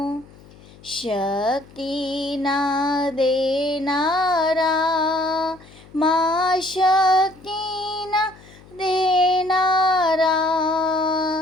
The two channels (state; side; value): noise; left; hum, 23 dB below the sound